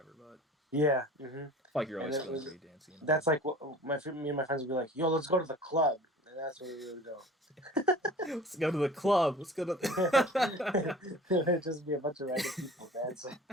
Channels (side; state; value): both; normal; correlation 0.43